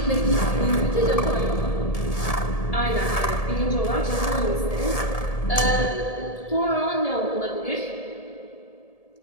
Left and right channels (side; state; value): right; late; 1.7 ms